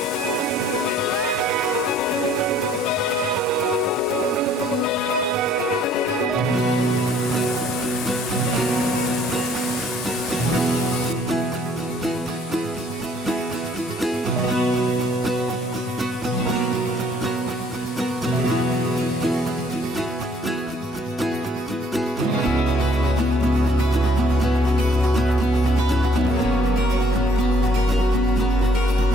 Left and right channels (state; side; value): normal; both; correlation 0.61